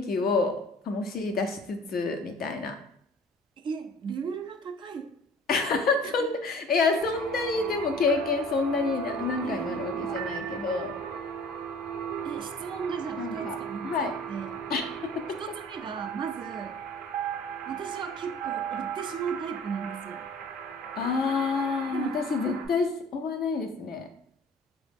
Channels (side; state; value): both; normal; correlation 0.47